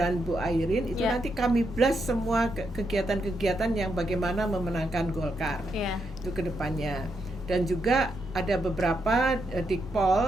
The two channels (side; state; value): both; normal; correlation 0.81